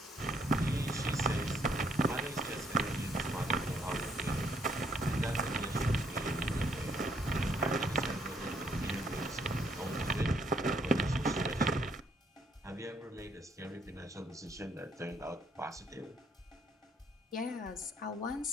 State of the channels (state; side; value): normal; both; correlation 0.69